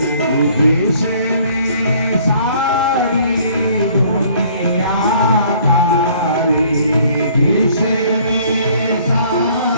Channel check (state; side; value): inverted; both; correlation -0.58